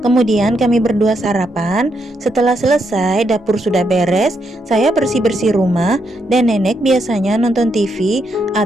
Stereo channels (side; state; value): both; normal; correlation 0.79